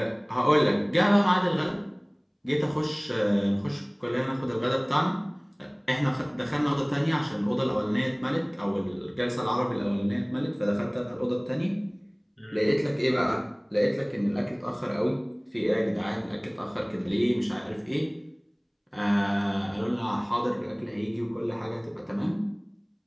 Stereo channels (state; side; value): identical; both; correlation 1.00